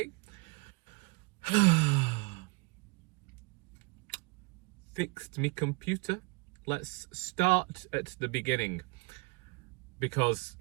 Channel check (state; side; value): quieter; left; 28.7 dB